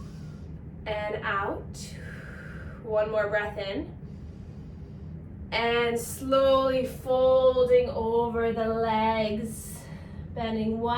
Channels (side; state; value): both; identical; correlation 1.00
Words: and out. 1 more breath in. And slowly folding over the legs. Bending